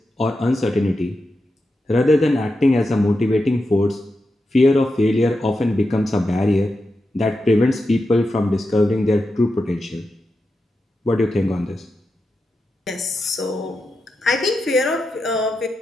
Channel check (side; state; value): both; normal; correlation 0.88